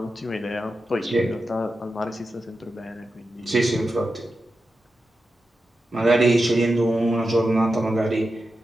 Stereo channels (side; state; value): both; normal; correlation 0.90